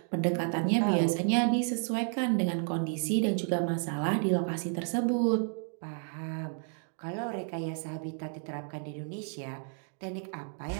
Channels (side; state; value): left; silent; 57 dB below the other